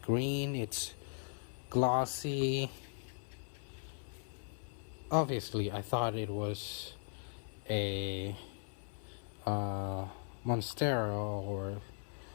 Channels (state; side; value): silent; right; 52 dB below the other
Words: green, it's glossy. Obviously, I thought it was a Monstera or